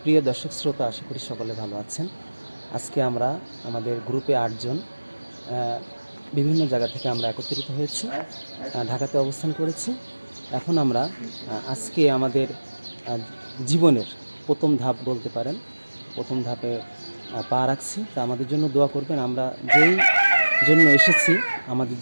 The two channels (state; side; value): inverted; both; correlation -1.00